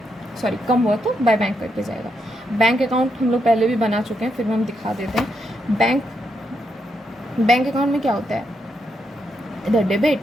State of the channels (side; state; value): both; normal; correlation 0.81